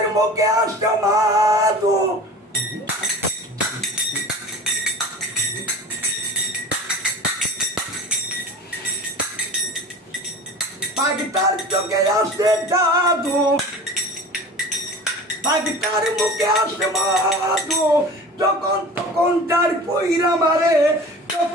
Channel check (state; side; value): normal; both; correlation 0.38